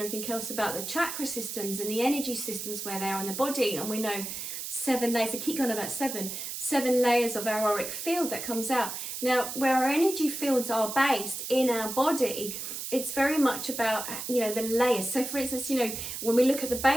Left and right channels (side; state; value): right; noise; hiss, 6 dB below the sound